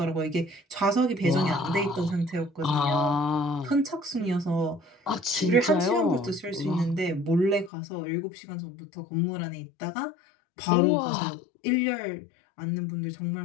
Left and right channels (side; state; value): right; drops out; at 7.7 s